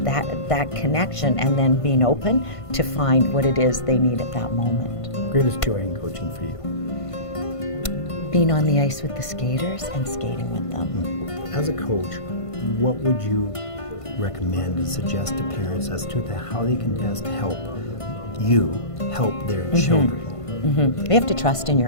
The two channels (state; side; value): late; right; 1.5 ms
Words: that connection, and then being open to find what it is they need at that moment. Greatest joy in coaching for you? Being on the ice with the skaters and skating with them. As a coach, what would you recommend and suggest to parents as to how they can best help their children You have to trust in